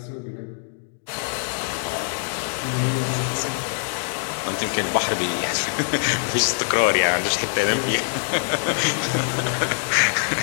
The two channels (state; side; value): silent; right; digital silence